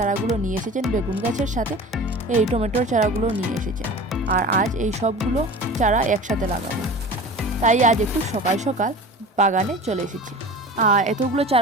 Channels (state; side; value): normal; both; correlation 0.37